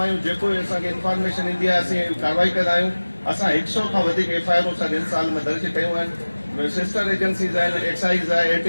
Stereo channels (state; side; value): inverted; both; correlation -1.00